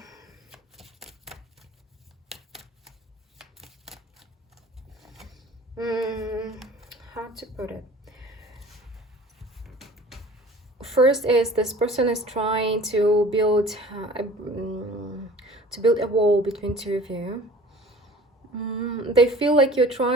how to put it? First is this person is trying to build a wall between 2 of you. They feel like you're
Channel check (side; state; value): both; normal; correlation 0.45